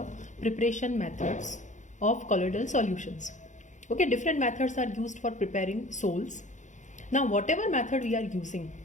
preparation methods of colloidal solutions. Okay, different methods are used for preparing sols. Now, whatever method we are using,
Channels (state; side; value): late; right; 0.35 ms